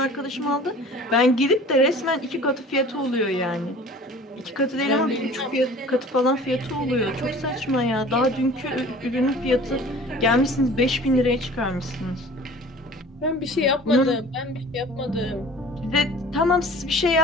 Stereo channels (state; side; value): normal; both; correlation 0.45